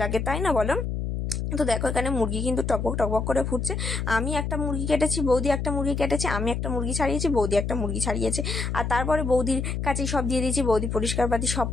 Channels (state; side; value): noise; left; hum, 2 dB below the sound